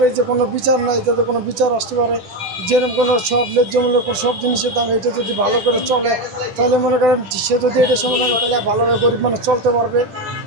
যে কোনো বিচার নাই, যাতে কোনো বিচার আসতে পারে, যেরকম কোনো সব ন্যায্যমূল্য সব জিনিসের দাম, এটা যদি ভালো করে চলে তাহলে মনে করেন সে যদি এটা সমাধান তাহলে ভালোভাবে গরিব মানুষ চলতে পারবে।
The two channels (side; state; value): left; late; 10 ms